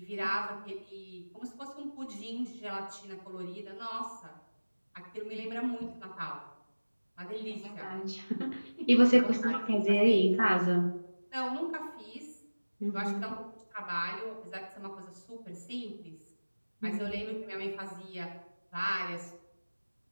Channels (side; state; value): both; inverted; correlation -1.00